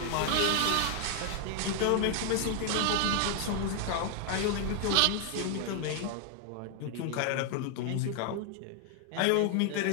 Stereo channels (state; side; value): different; both; correlation 0.00